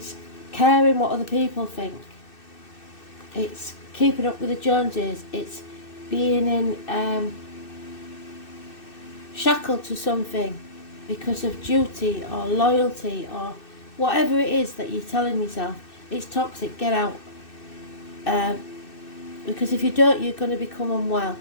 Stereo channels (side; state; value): right; late; 2.6 ms